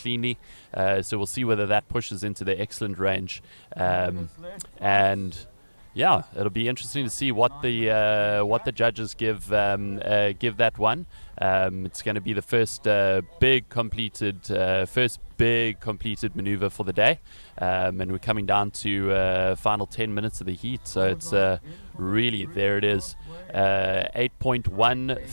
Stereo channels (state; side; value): inverted; both; correlation -1.00